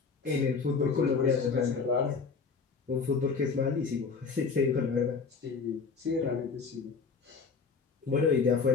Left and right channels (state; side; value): quieter; right; 5.1 dB